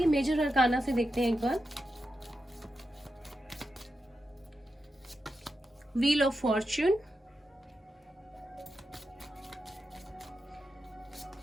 मेजर अरकाना से देखते हैं एक बार। व्हील ऑफ फॉर्च्यून,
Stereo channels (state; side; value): normal; both; correlation 0.89